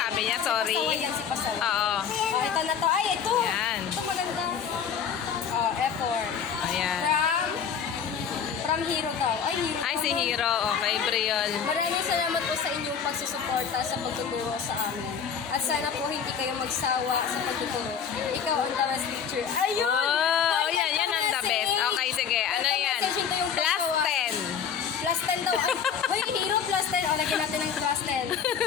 niya, sorry. Pasaway yan si Pasaway. Oo. Oh, ito na to. Ay, ito. Yan. Ito maganda. Oh, effort. Ayan. From Hero daw. Ay, Hero. Ay, si Hero. Okay, Briol. Maraming salamat po sa inyong pagsusuporta sa pagtuturo sa amin. At sana po hindi kayo magsawa sa pagtuturo. Ikaw ang the best teacher. Ayun! Oh, Ay, yan. Yan ang the message. best. Okay, sige. Ano Ito yan? message, ito yung Plus pasaway. 10. Plus 10 daw. Hoy, Hero plus 10. O, lagyan natin ng plus 10.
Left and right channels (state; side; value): quieter; right; 7.3 dB